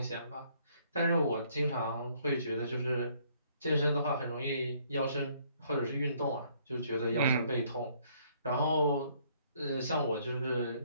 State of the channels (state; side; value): inverted; both; correlation -0.65